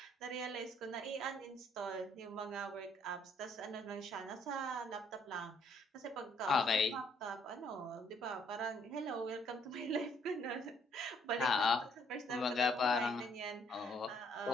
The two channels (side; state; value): both; normal; correlation 0.67